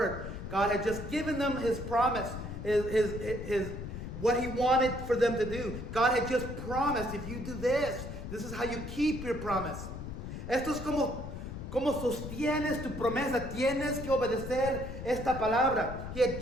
God had just given them his promise, his what he wanted for them to do. God had just promised, if you do this, this is how you keep your promise. Esto es como sostienes tu promesa. Tienes que obedecer esta palabra. He had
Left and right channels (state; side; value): noise; left; rumble, 8 dB below the sound